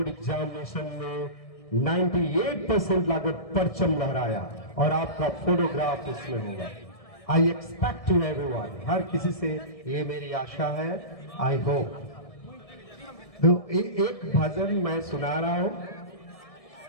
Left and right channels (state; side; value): late; right; 1.6 ms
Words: एग्जामिनेशन में 98% लाकर परचम लहराया और आपका फोटोग्राफ उसमें होगा। आई एक्सपेक्ट टू एवरीवन, हर किसी से ये मेरी आशा है, आई होप। तो एक भजन मैं सुना रहा हूं,